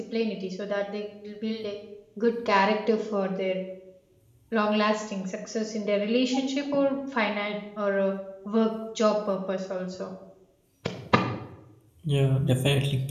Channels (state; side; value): identical; both; correlation 1.00